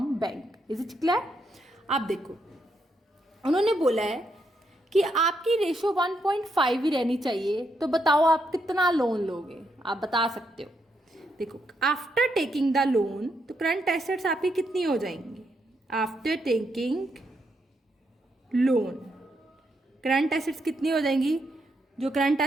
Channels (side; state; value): both; normal; correlation 0.79